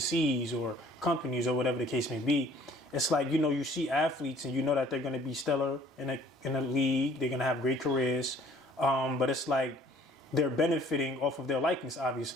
or companies or whatever the case may be, it's like you see athletes and that they're going to be stellar in a league, they're going to have great careers, but it's like they're benefiting off of their likeness,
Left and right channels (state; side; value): normal; both; correlation 0.55